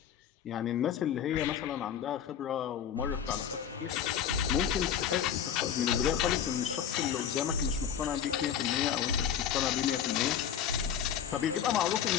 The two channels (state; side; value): quieter; right; 8.8 dB